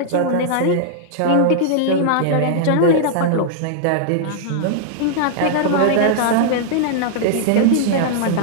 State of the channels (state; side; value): different; both; correlation -0.01